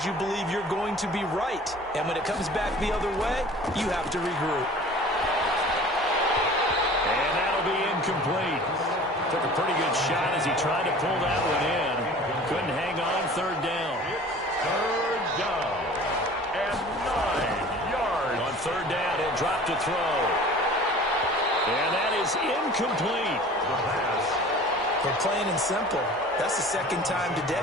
you believe you're going to be right. And when it comes back the other way, you have to regroup. And that'll be incomplete. Took a pretty good shot as he tried to pull that one in. Couldn't hang on. Third down. Third down. And 9 yards. On third down, he'll drop to throw. And that is incomplete. The pass. For plain and simple, that's the second time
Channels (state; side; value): normal; both; correlation 0.44